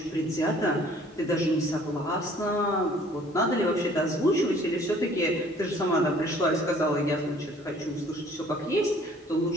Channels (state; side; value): normal; both; correlation 0.55